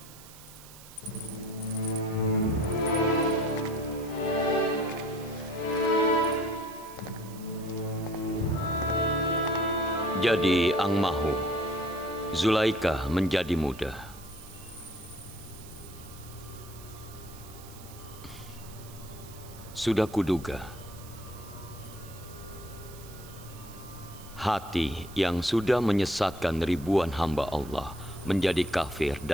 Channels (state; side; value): noise; right; hiss, 19 dB below the sound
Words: Jadi Ang Mahu, Zulaika menjadi muda. Sudah kuduga, hati yang sudah menyesatkan ribuan hamba Allah menjadi kafir